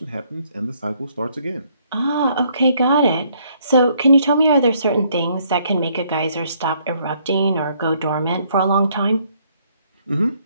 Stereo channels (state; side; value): inverted; both; correlation -0.67